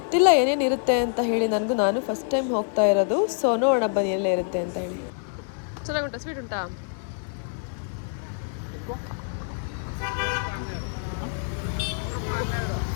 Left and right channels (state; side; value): silent; right; 61 dB below the other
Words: ಏನೇನಿರುತ್ತೆ ಅಂತ ಹೇಳಿ, ನಾನು ಫಸ್ಟ್ ಟೈಮ್ ಹೋಗ್ತಾ ಇರೋದು. ಸೊ ನೋಡೋಣ ಬನ್ನಿ ಎಲ್ಲೇ ಇರುತ್ತೆ ಅಂತ ಹೇಳಿ. ಚೆನ್ನಾಗುಂಟಾ? ಸ್ವೀಟ್ ಉಂಟಾ?